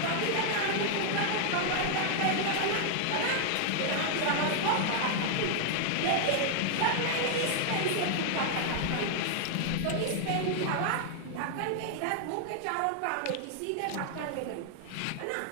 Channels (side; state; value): both; different; correlation 0.00